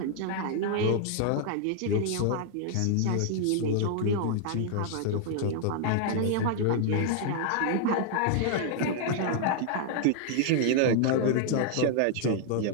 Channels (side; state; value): both; different; correlation 0.00